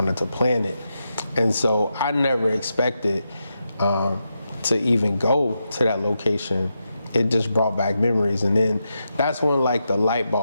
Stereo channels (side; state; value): both; inverted; correlation -0.86